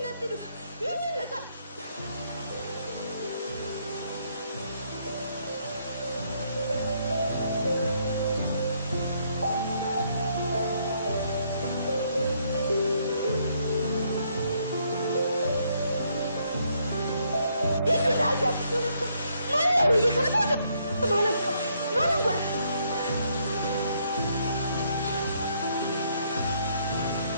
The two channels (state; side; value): inverted; both; correlation -0.71